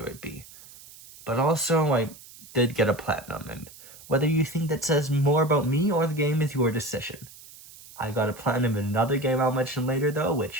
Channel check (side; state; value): right; noise; hiss, 20 dB below the sound